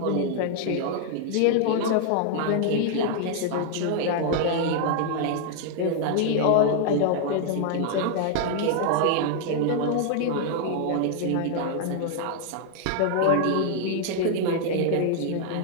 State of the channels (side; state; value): both; different; correlation 0.00